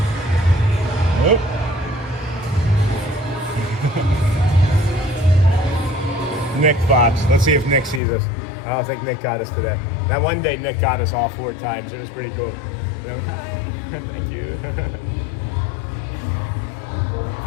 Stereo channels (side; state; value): right; drops out; at 8.0 s